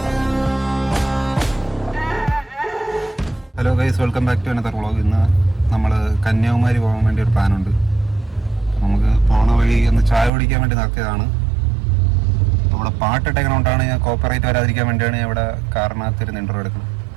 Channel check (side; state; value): left; drops out; at 10.3 s